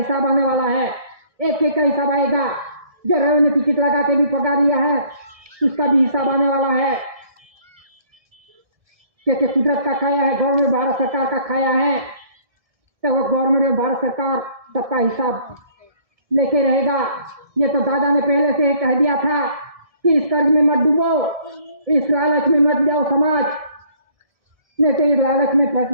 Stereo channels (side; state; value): left; late; 1.7 ms